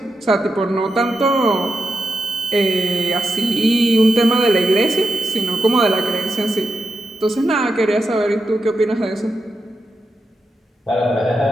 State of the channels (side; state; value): both; normal; correlation 0.86